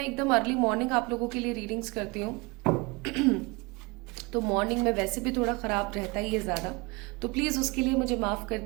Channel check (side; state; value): left; quieter; 26.5 dB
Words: एकदम अर्ली मॉर्निंग आप लोगों के लिए रीडिंग्स करती हूँ तो मॉर्निंग में वैसे भी थोड़ा ख़राब रहता ही है ज़्यादा, तो प्लीज़ उसके लिए मुझे माफ़ कर